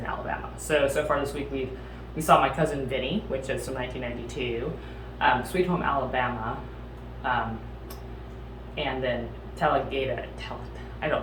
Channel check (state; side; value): identical; both; correlation 1.00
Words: Alabama. So far this week we saw My Cousin Vinny, which is from 1992, Sweet Home Alabama, and then Talladega.